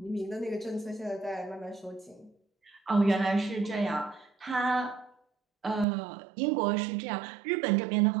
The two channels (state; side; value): drops out; left; at 5.9 s